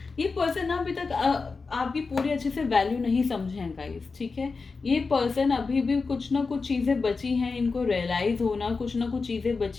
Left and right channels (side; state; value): right; quieter; 4.4 dB